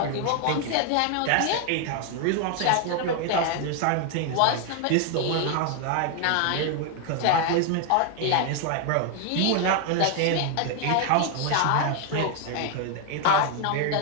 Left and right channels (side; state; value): both; different; correlation 0.00